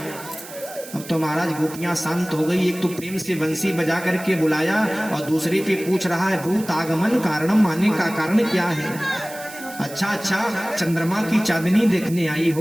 अब तो महाराज गोपियां शांत हो गई। एक तो प्रेम से बंसी बजा करके बुलाया और दूसरे पे पूछ रहा है भूत आगमन कारणम, आने का कारण क्या है। अच्छा चंद्रमा की चांदनी देखने आई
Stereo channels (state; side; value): noise; right; hiss, 15 dB below the sound